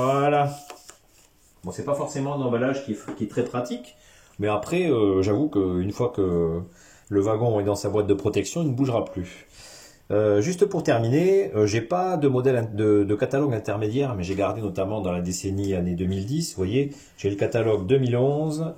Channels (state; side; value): identical; both; correlation 1.00